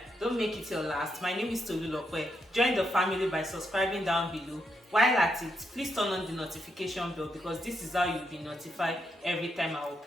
don't make it your last. My name is Tolulope. Join the family by subscribing down below. While at it, please turn on the notification bell because this is how you'll be notified every time I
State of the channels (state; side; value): normal; both; correlation 0.81